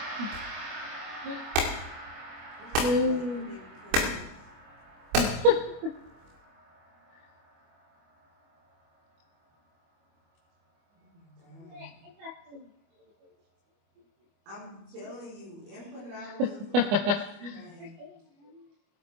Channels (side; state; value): left; late; 25 ms